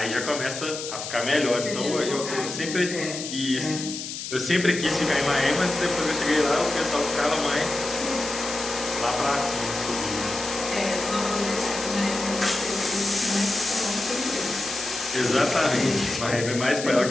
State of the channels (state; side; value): noise; left; hiss, 7 dB below the sound